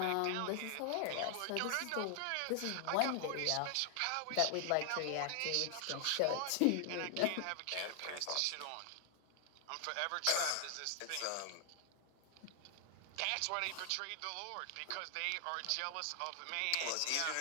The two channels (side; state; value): both; different; correlation 0.00